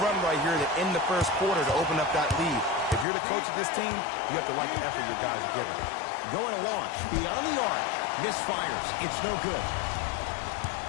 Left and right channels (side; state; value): right; drops out; at 3.1 s